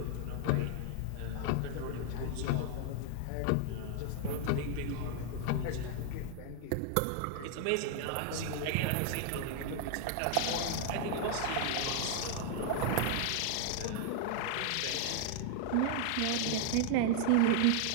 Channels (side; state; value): both; different; correlation 0.00